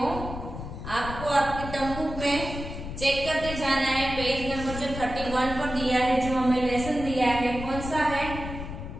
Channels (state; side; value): noise; left; rumble, 8 dB below the sound